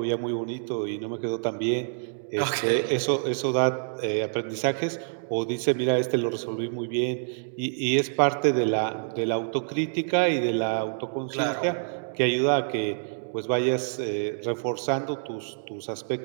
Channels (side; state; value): left; silent; digital silence